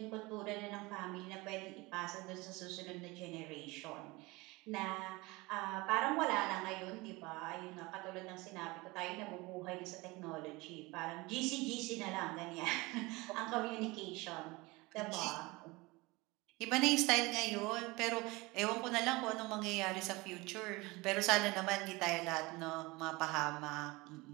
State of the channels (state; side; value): quieter; left; 23.2 dB